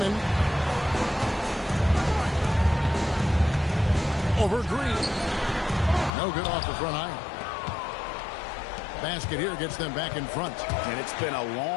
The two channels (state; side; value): drops out; right; at 6.1 s